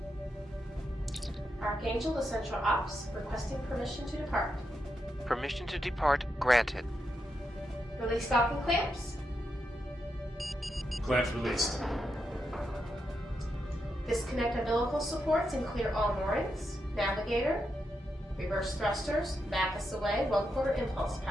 Archangel to Central Ops, requesting permission to depart. Permission to depart granted. Release stocking clamps. Clamps released. Disconnect umbilical supports and clear all moorings. Navigator. Reverse thrusters. Back us away. 1/4 impulse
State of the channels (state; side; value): normal; both; correlation 0.84